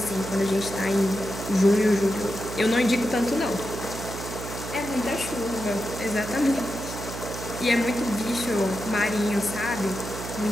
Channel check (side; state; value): right; noise; hum, 8 dB below the sound